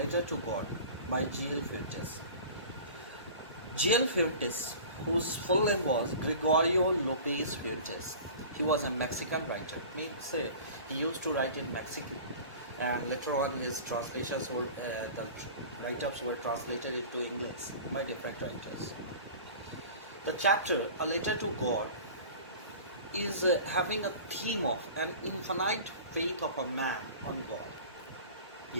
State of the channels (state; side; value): inverted; both; correlation -0.40